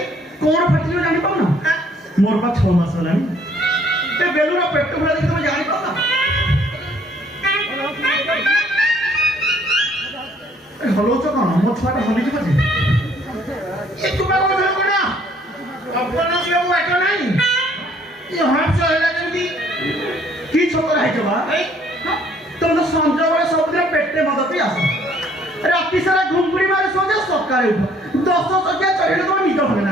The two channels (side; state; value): both; normal; correlation 0.62